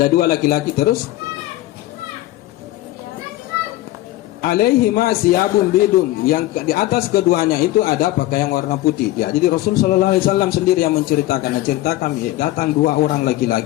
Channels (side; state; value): right; quieter; 16.4 dB